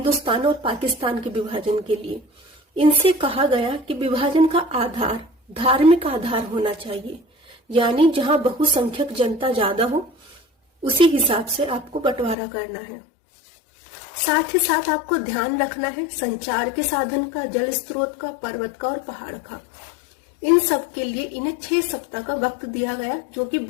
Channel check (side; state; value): right; drops out; at 12.4 s